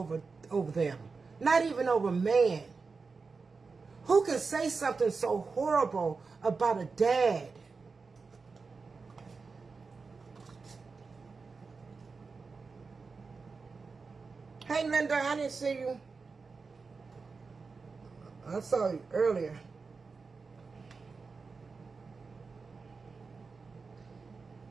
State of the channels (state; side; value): quieter; left; 4.6 dB